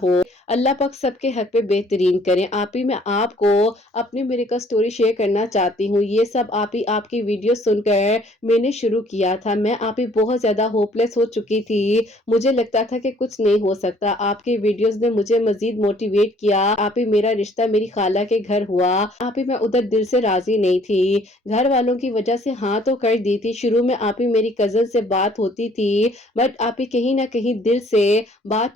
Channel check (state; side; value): normal; both; correlation 0.59